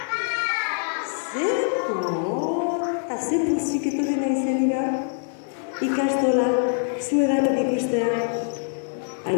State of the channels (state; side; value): silent; right; digital silence